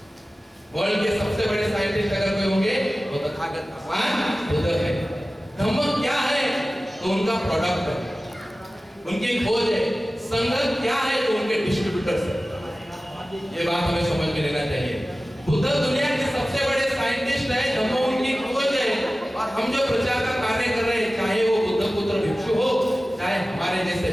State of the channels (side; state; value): both; normal; correlation 0.96